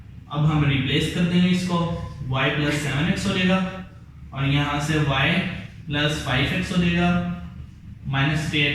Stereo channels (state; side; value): identical; both; correlation 1.00